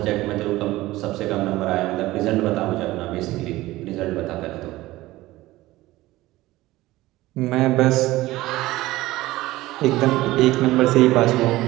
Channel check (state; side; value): quieter; left; 17.7 dB